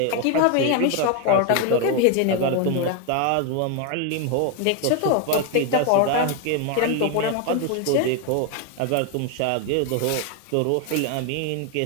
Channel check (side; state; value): both; different; correlation 0.01